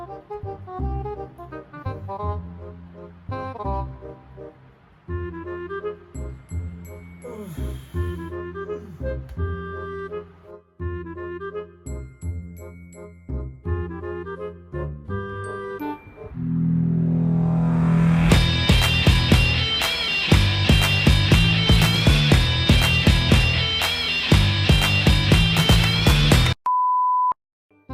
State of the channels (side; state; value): both; identical; correlation 1.00